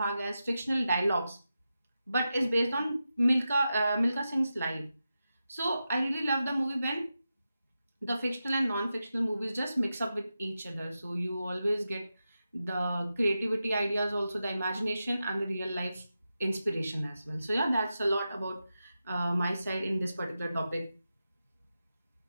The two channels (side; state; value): both; inverted; correlation -0.90